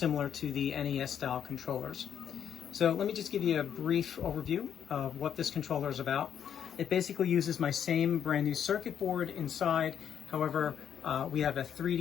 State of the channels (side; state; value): right; quieter; 8.8 dB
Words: to the NES style controllers. So let me just give you a brief overview of what this controller is about. It basically uses my same brand new circuit board inside. However, we have a